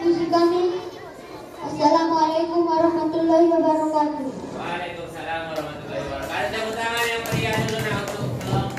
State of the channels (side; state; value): both; identical; correlation 1.00